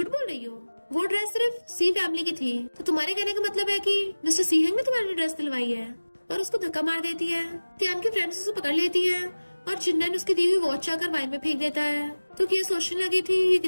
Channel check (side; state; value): both; inverted; correlation -1.00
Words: बोल रही हो, वो ड्रेस सिर्फ सी फैमिली की थी। तो तुम्हारे कहने का मतलब है कि मिस्टर सी हेंग ने तुम्हारी ड्रेस दिलवाई है, और उसको धक्का मार देती है। तियान की फ्रेंड्स उसे पकड़ लेती है और जिन्नन उसकी दी हुई वॉच आकर वाइन में फेंक देता है। तो ये सोचने लगी थी ये